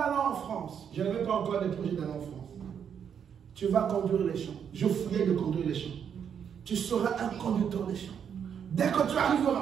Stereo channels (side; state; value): left; quieter; 7.9 dB